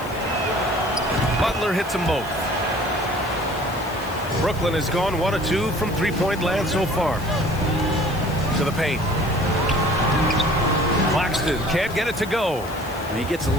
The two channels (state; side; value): noise; left; hiss, 18 dB below the sound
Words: Butler hits them both. Brooklyn has gone 1 of 2 from three-point land so far. To the paint. Claxton can't get it to go. And he gets a